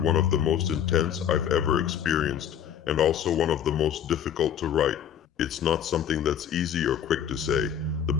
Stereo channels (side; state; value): right; quieter; 9.0 dB